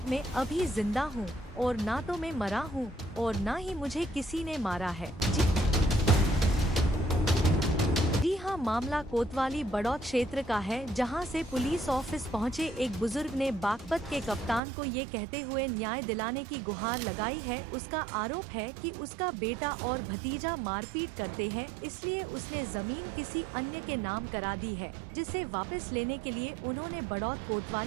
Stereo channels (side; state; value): left; drops out; at 14.6 s